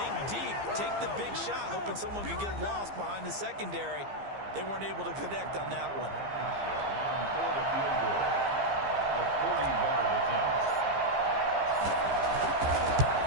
deep, take the big shot, hoping someone can get lost behind the secondary. They weren't able to connect on that one. For the field goal, a 40-yard attempt.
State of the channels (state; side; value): late; left; 15 ms